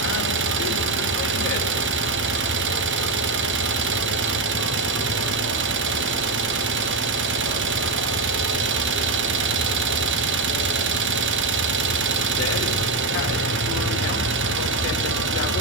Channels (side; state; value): left; quieter; 3.4 dB